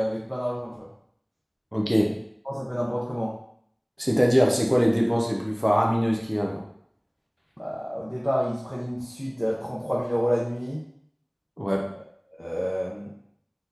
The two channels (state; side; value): identical; both; correlation 1.00